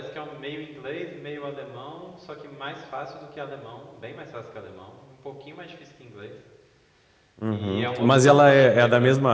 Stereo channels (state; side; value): identical; both; correlation 1.00